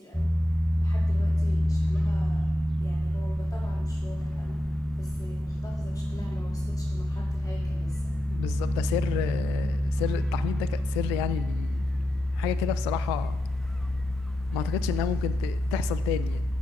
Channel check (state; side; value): normal; both; correlation 0.86